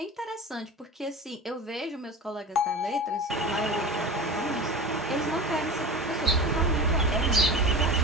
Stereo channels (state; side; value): normal; both; correlation 0.31